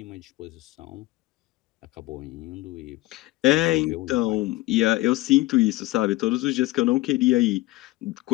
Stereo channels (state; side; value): quieter; right; 19.1 dB